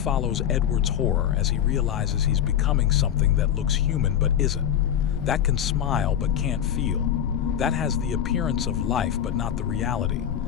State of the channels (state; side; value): quieter; right; 9.7 dB